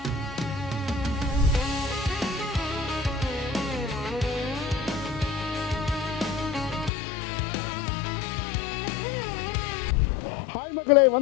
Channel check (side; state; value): right; drops out; at 6.9 s